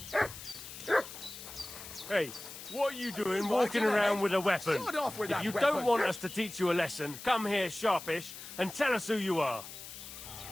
Hey, what are you doing walking around with a weapon? Sod off with if that you weapon. don't want us to teach you a lesson, come here sharpish and tell us who you are.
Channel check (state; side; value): noise; left; hiss, 12 dB below the sound